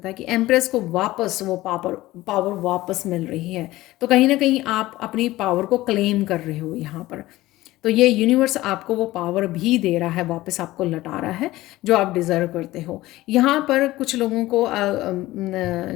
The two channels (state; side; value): quieter; right; 17.4 dB